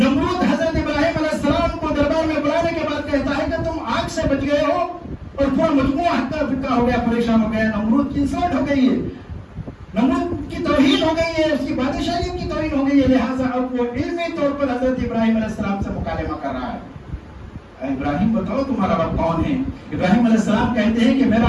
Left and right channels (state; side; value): identical; both; correlation 1.00